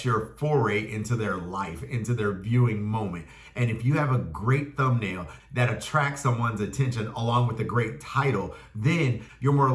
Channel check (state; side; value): identical; both; correlation 1.00